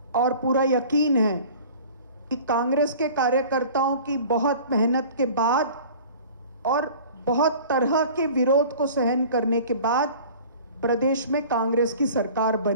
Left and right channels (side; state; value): both; inverted; correlation -0.44